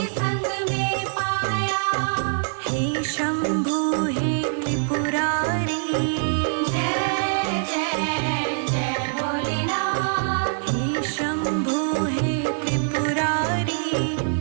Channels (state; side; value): silent; left; digital silence